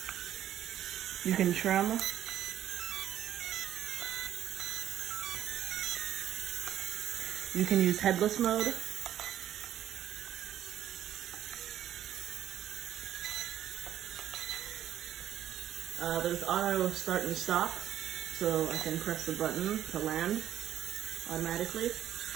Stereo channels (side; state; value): left; quieter; 11.3 dB